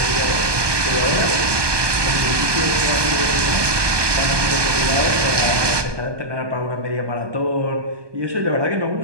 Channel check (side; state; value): left; late; 1.2 ms